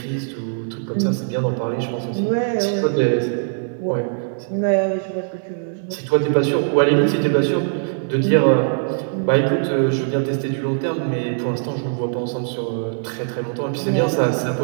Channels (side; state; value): left; silent; 65 dB below the other